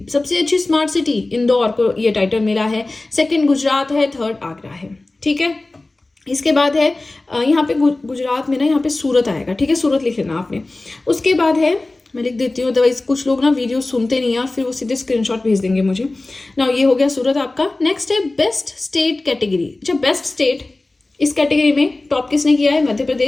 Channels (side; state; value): right; quieter; 3.0 dB